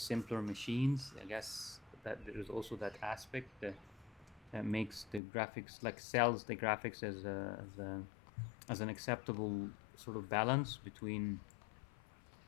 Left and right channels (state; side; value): drops out; right; at 5.2 s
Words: machines. I guess that there's also that aspect that makes the graphics, like sells the graphics as an acceptable sort of balance between